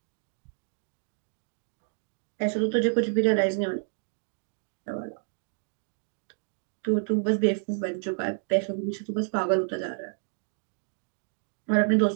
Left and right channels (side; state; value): left; silent; digital silence